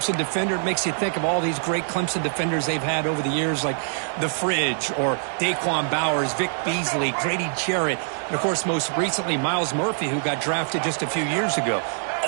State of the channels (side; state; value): left; silent; 62 dB below the other